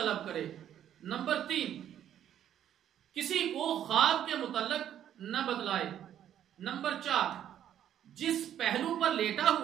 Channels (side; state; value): left; quieter; 10.5 dB